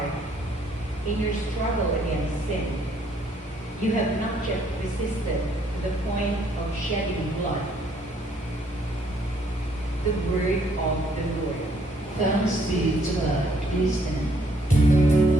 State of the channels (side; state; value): both; normal; correlation 0.66